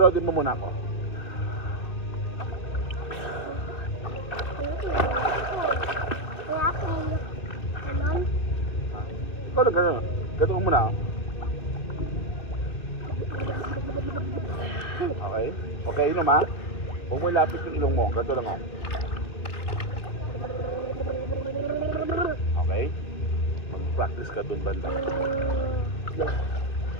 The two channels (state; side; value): late; right; 2.6 ms